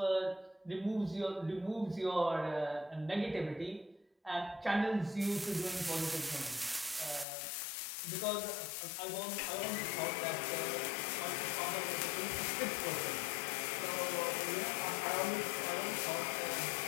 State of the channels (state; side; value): drops out; right; at 7.2 s